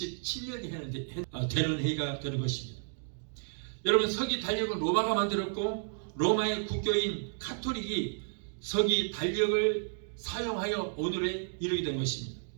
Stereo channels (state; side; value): silent; left; digital silence